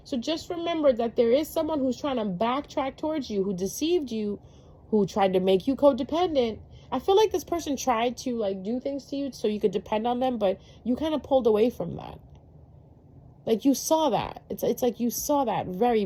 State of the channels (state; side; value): identical; both; correlation 1.00